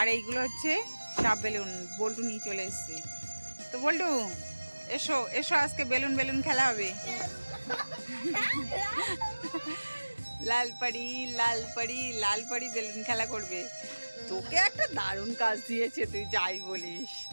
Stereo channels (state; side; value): inverted; both; correlation -1.00